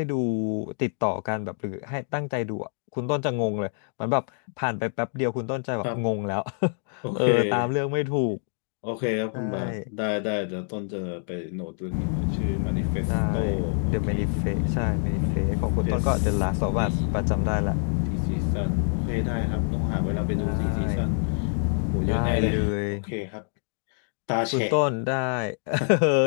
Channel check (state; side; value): silent; right; digital silence